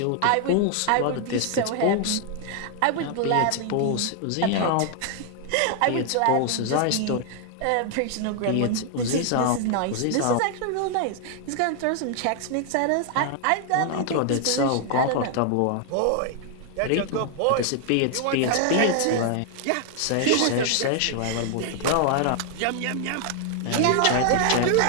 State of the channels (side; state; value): both; different; correlation 0.00